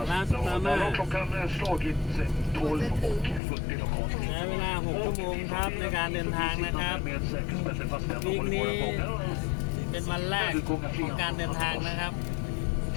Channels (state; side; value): drops out; right; at 3.4 s